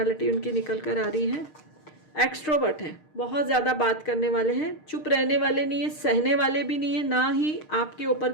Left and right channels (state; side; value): late; right; 6.5 ms